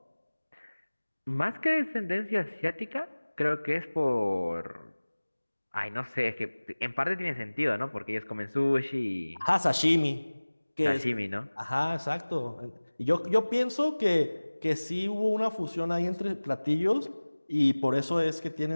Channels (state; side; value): inverted; both; correlation -1.00